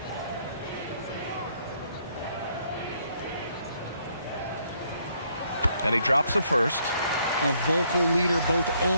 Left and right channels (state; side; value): inverted; both; correlation -0.70